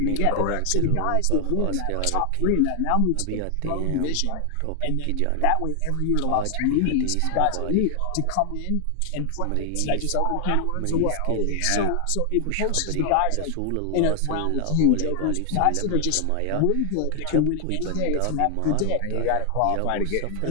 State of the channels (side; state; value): both; different; correlation 0.00